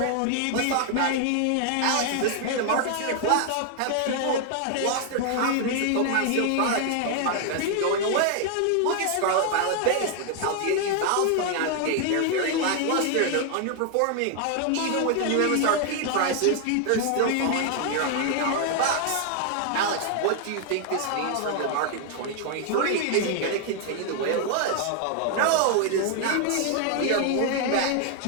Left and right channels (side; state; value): both; different; correlation 0.00